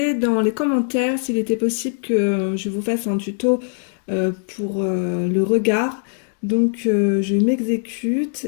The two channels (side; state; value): right; silent; digital silence